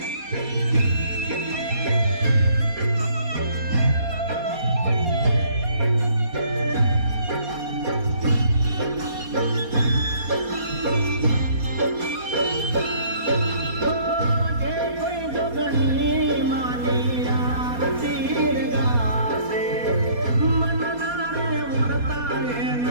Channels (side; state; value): left; late; 4.2 ms